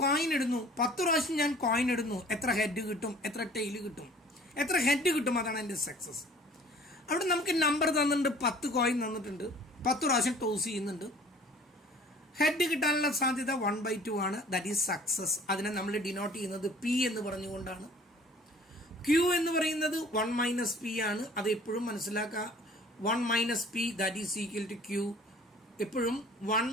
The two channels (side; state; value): both; normal; correlation 0.50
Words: coin ഇടുന്നു, 10 പ്രാവശ്യം ഞാൻ coin ഇടുന്നു, എത്ര head കിട്ടും, എത്ര ടെയിൽ കിട്ടും, എത്ര ഹെഡ് കിട്ടും, അതാണ് എൻ്റെ സക്സസ്. അവിടെ നമുക്ക് നമ്പർ തന്നിട്ടുണ്ട്, 10 കോയിൻ തന്നിട്ടുണ്ട്, 10 പ്രാവശ്യം ടോസ് ചെയ്യുന്നുണ്ട്, ഹെഡ് കിട്ടാനുള്ള സാധ്യത 1/2 ആണ്. That is success. അതിനെ നമ്മൾ ഡിനോട്ട് ചെയ്യുന്നത് പി എന്ന് പറഞ്ഞുകൊണ്ടാണ്. ക്യൂ എന്ന് പറയുന്നത് 1 - p ആണ്. അത് എപ്പോഴും മനസ്സിലാക്കുക. 1 - p that is equal to Q. എപ്പോഴും 1